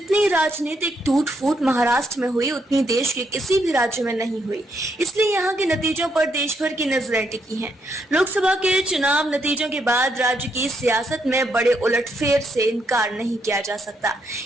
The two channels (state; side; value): normal; both; correlation 0.77